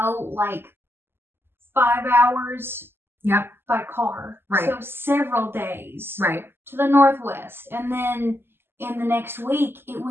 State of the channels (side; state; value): left; late; 0.11 ms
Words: like 5 hours by car. Right. So several days. Right. To the northwest. And then in the next week, it